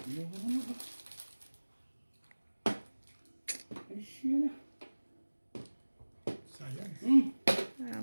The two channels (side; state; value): both; inverted; correlation -1.00